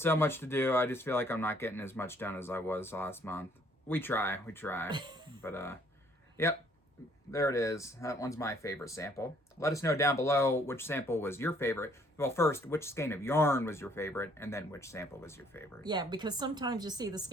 much to do. I just feel like I'm not getting as much done as I was last month. We try. But, yep, there it is. That one's my favorite sample. Let us know down below which sample was your favorite. Well, first, which skein of yarn was your favorite, and then which sample was your favorite. Yeah, because sometimes you see the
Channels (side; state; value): both; normal; correlation 0.63